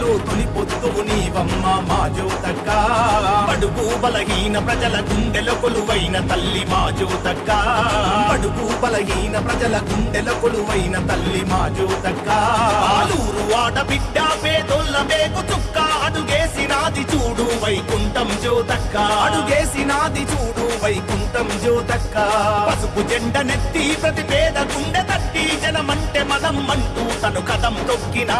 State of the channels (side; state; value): both; identical; correlation 1.00